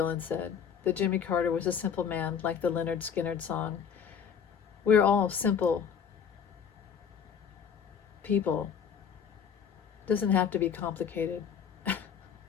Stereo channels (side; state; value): right; quieter; 7.3 dB